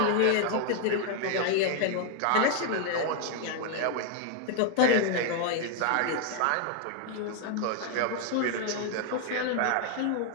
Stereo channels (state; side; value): different; both; correlation 0.01